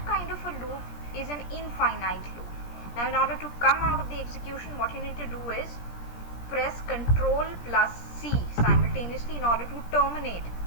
kind of a loop is an infinite loop. Now in order to come out of the execution, what you need to do is press Ctrl plus C simultaneously in order to terminate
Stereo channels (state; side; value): late; right; 17 ms